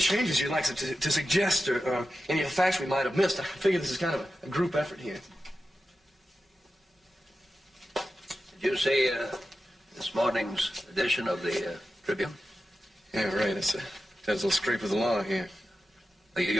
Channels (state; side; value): normal; both; correlation 0.92